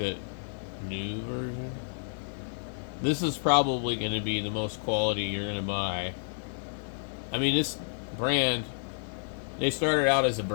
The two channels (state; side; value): silent; right; digital silence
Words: new version. This is probably going to be the most quality you're going to buy. I mean, this brand, they started out as a